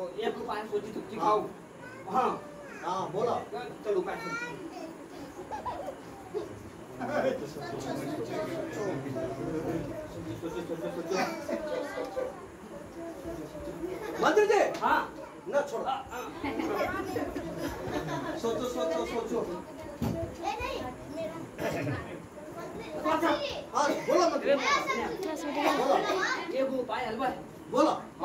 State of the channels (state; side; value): identical; both; correlation 1.00